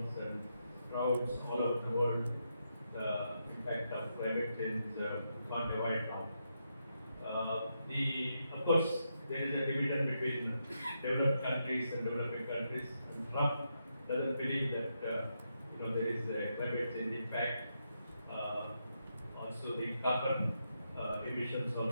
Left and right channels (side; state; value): both; inverted; correlation -0.83